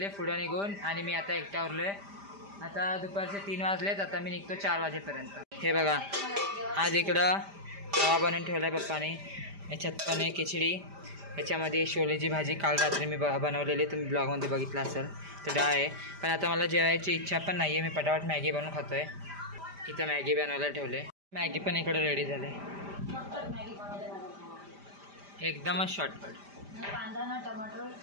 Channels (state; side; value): late; left; 5.0 ms